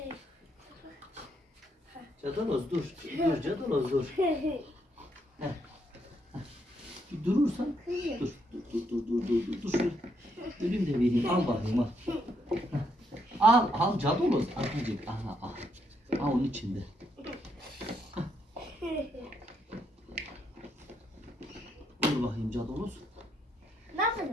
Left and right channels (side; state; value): both; normal; correlation 0.75